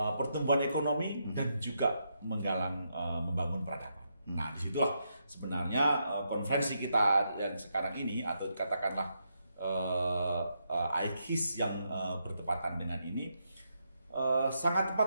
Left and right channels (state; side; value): inverted; both; correlation -0.81